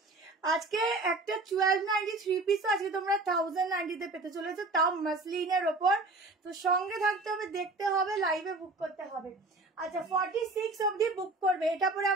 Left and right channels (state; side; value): quieter; left; 3.2 dB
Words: আজকে একটা 1290 3 পিস আজকে তোমরা 1090-তে পেতে চলেছো, তাও মাসলিনের ওপর। তো সঙ্গে থাকতে হবে, দেখতে হবে, লাইভে বুক করতে হবে। আচ্ছা, 46 অবধি বুক করবে। এটা পরে